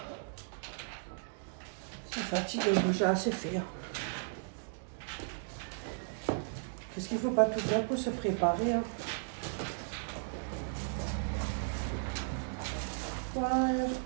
ça fatigue, j'ai assez fait. Qu'est-ce qu'il faut pas tout faire pour se préparer. Hein. Ouais.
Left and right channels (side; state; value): left; silent; digital silence